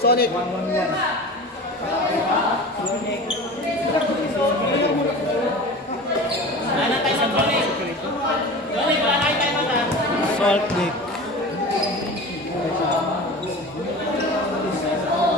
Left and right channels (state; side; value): normal; both; correlation 0.34